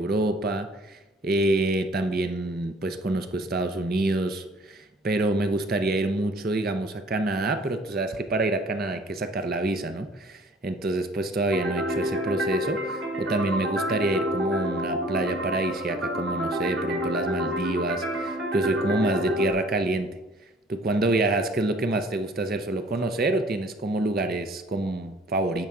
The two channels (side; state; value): both; normal; correlation 0.53